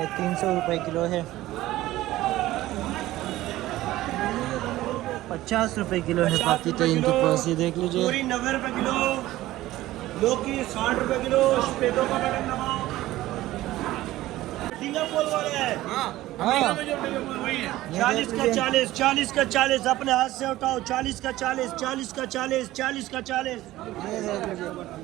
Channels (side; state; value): left; quieter; 16.1 dB